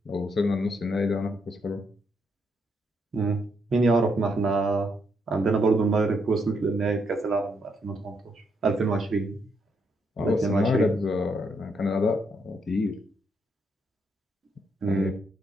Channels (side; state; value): both; normal; correlation 0.76